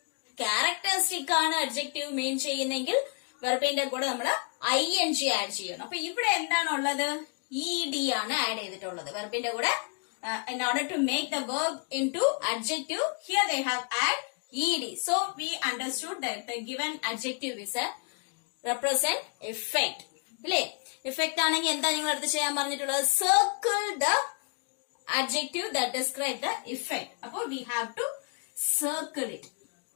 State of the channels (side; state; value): right; quieter; 34.2 dB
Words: ക്യാരക്ടറിസ്റ്റിക് ആണ് അഡ്ജക്റ്റീവ് മെയിൻ ചെയ്യുന്നെങ്കിൽ വെർബിന്റെ കൂടെ നമ്മൾ ing ആഡ് ചെയ്യണം. അപ്പൊ ഇവിടെ എന്താണുള്ളത്? ed ആണ് ആഡ് ചെയ്തിട്ടുള്ളത് വെർബിന്റെ കൂടെ. In order to make the verb into adjective, here they have add ed. So we understood that the given adjective is a represent effect. ഇല്ലേ, effect ആണെങ്കിൽ എന്താ നിങ്ങൾ അടുത്ത് ചെയ്യാൻ പറഞ്ഞിട്ടുള്ളത്? Circle the adjective that describe the effect. Appo we have to circle it.